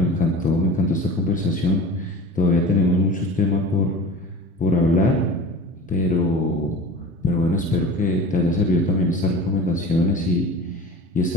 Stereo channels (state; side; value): normal; both; correlation 0.36